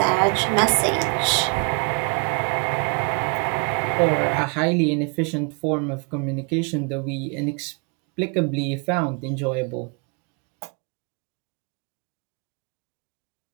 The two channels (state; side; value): quieter; left; 35.1 dB